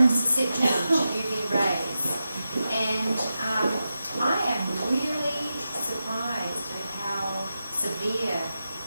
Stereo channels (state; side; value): inverted; both; correlation -0.90